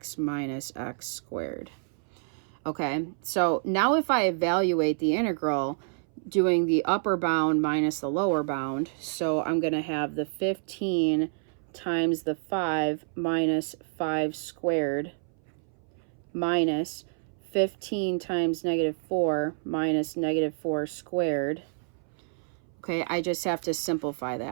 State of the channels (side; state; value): left; silent; 59 dB below the other